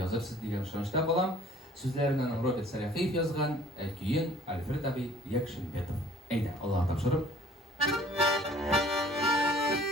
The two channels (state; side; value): normal; both; correlation 0.53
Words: yozibsiz degan ishonchda bo'laman. So'zlarini Robert Sarafiyev yozgan, keyin Alfred abi Yakshinbetov. Ayda, Alloh topshirib.